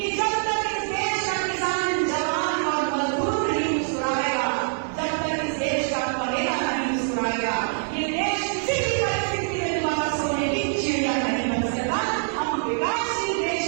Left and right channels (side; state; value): left; silent; digital silence